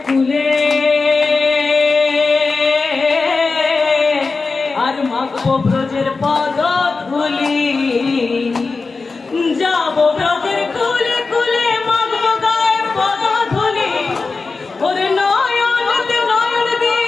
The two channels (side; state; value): right; quieter; 4.1 dB